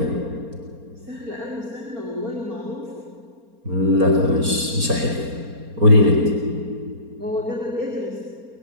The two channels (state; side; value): late; left; 4.3 ms